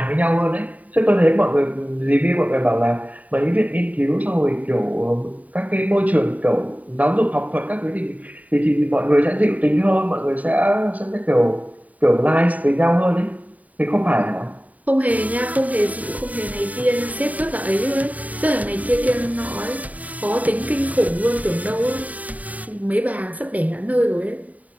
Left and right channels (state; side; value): late; left; 0.073 ms